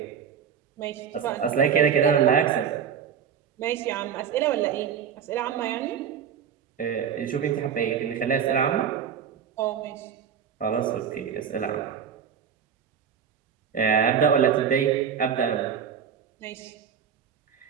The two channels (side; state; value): left; quieter; 7.7 dB